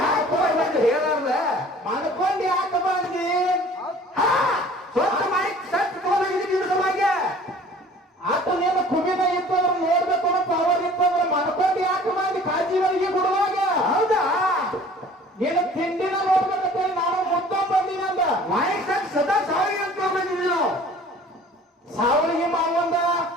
ಯಾಕೆ ಹೇಳಲ್ಲ ಮಾಡ್ಕೊಂಡು ಯಾಕೆ ಬಂದಿ ಸ್ವಚ್ಛ ಮಾಡಿ ಸತ್ ತಗೊಂಡಿದ್ದ ಆತ ನೀನು ಕುಬಿನ ಇತ್ತಂದ್ರೆ ನೋಡ್ಬೇಕು ಅನ್ನೋ ಪವರ್ ಇತ್ತಂದ್ರೆ ಮಾಡ್ಕೊಂಡು ಯಾಕೆ ಮಾಡಿ ಕಾಜಿ ಬರಿಗೆ ಗುಡ್ದಾಗ. ಹೌದಾ ನೀನು ತಿಂಡಿನ ನೋಡ್ಬೇಕಂತೇಳಿ ನಾನು ಮುದ್ದ ಬಂದಿನಂದ ಮಾಯಿಕ್ ಸತ್ ಸದಾ ಸಾವಿಗೆ ಅಂತ ಬಂದಿದ್ವಿ ನಾವು. ಸಾವಳಿಗೆ ಮಾವಂದ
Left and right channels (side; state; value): both; normal; correlation 0.49